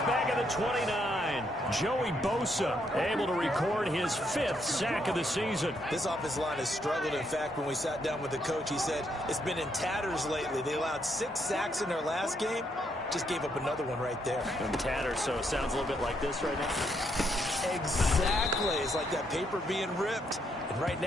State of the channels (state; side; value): normal; both; correlation 0.75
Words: back at the 29. Joey Bosa able to record his 5th sack of the season. This offensive line has struggled. In fact, when we sat down with the coach, he said it's been in tatters lately. They allowed 6 sacks in their last game. Just gave up another one right there. In tatters, so it sounds a little bit like this right now. Exactly. It's like that paper being ripped. And right